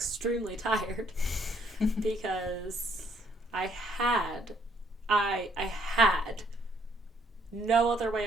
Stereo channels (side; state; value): both; normal; correlation 0.68